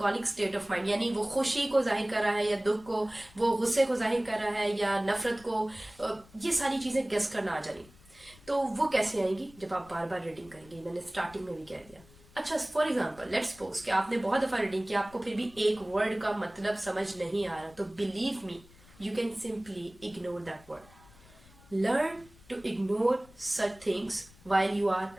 स्टेट ऑफ माइंड, यानी वो खुशी को जाहिर कर रहा है या दुख को, वो गुस्से को जाहिर कर रहा है या नफरत को, ये सारी चीजें गेस करना आ जानी। तो वो कैसे आएंगी, जब आप बार बार रीडिंग करेंगे। मैंने स्टार्टिंग में भी कह दिया। अच्छा, फॉर एग्जाम्पल लेट्स सपोज कि आपने बहुत दफा रीडिंग किया, आपको फिर भी एक वर्ड का मतलब समझ नहीं आ रहा, तो believe me you can simply ignore that word. Learn to ignore such things while you are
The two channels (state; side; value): noise; left; rumble, 24 dB below the sound